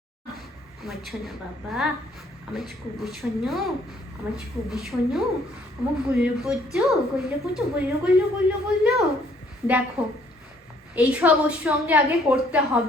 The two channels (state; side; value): normal; both; correlation 0.63